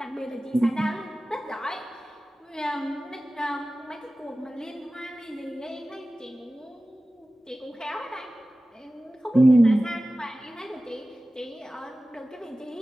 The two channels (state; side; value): normal; both; correlation 0.96